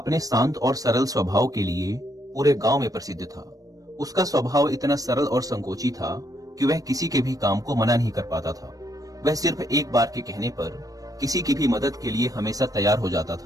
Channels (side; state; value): left; late; 0.17 ms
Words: शांत और सरल स्वभाव के लिए पूरे गांव में प्रसिद्ध था। उसका स्वभाव इतना सरल और संकोची था कि वह किसी के भी काम को मना नहीं कर पाता था। वह सिर्फ एक बार के कहने पर किसी की भी मदद के लिए हमेशा तैयार हो जाता